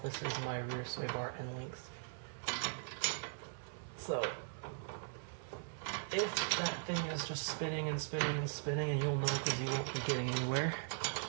This is my rear sway bar end links. So if that thing is just spinning and spinning and spinning, and you'll know because you won't be getting anywhere,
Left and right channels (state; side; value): silent; left; 51 dB below the other